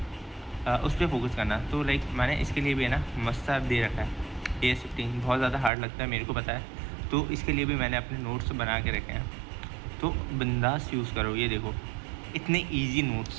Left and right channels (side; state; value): left; drops out; at 5.7 s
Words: उस पर फोकस करना। तो लाइक मैंने इसके लिए भी है ना मस्त दे रखा है। AS15 बहुत ज़्यादा हार्ड लगता है मेरे को पता है, तो इसके लिए भी मैंने अपने नोट्स बना के रखे हैं, तो बिंदास यूज़ करो। ये देखो इतने ईजी